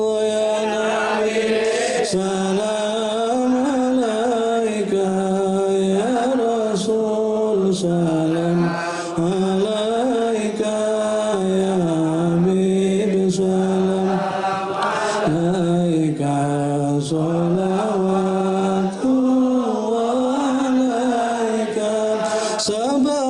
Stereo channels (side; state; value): both; identical; correlation 1.00